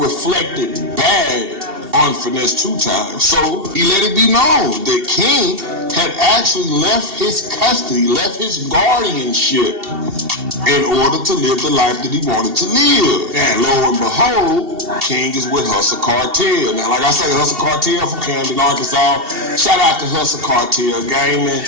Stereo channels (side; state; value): left; late; 2.7 ms